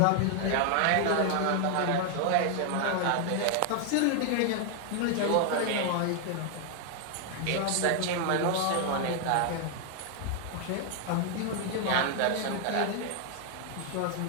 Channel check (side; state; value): both; different; correlation 0.00